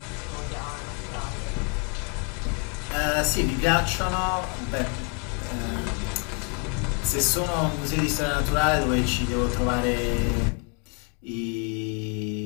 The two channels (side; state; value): right; quieter; 36.7 dB